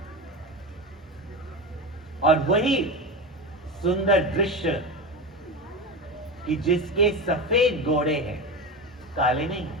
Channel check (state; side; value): normal; both; correlation 0.22